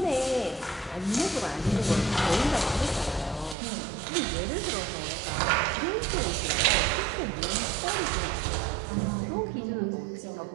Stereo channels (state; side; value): drops out; left; at 3.6 s